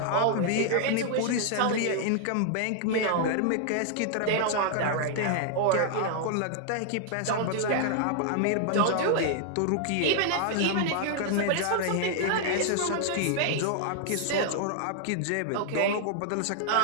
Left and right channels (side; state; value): both; different; correlation 0.00